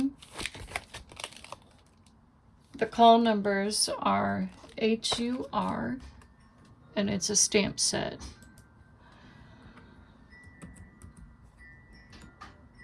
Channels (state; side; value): identical; both; correlation 1.00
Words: the call numbers are HUR, and it's a stamp set.